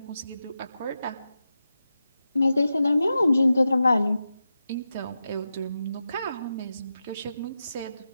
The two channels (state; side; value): inverted; both; correlation -0.90